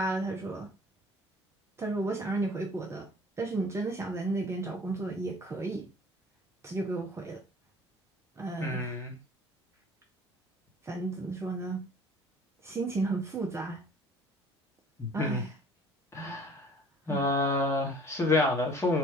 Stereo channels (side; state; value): both; normal; correlation 0.50